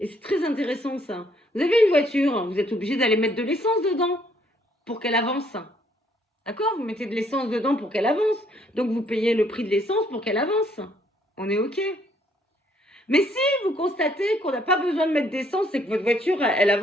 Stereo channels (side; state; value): both; normal; correlation 0.67